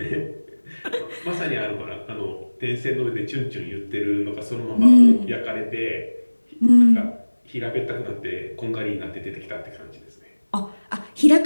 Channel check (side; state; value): both; inverted; correlation -1.00